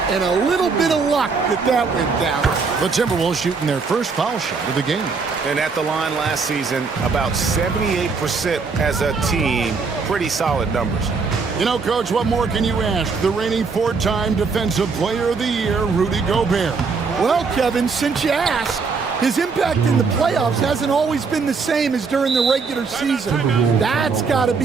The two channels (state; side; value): quieter; left; 4.9 dB